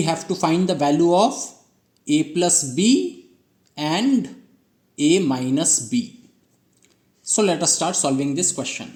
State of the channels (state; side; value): identical; both; correlation 1.00